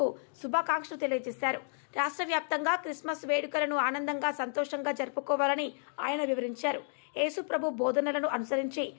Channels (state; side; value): silent; right; digital silence